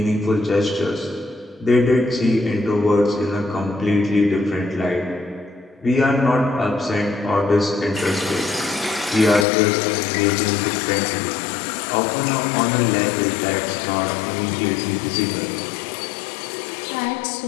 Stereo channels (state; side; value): drops out; right; at 9.5 s